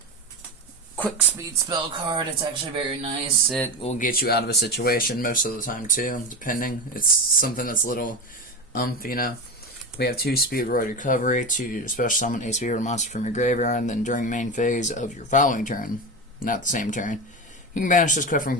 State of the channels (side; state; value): both; normal; correlation 0.21